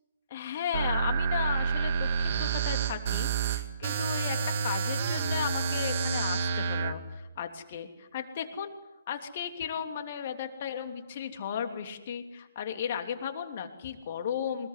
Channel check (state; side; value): inverted; both; correlation -0.63